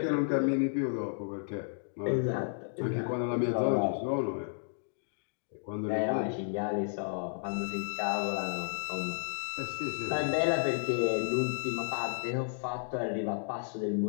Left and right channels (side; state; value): right; silent; digital silence